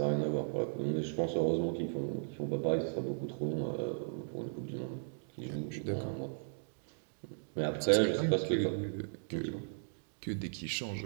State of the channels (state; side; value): silent; left; digital silence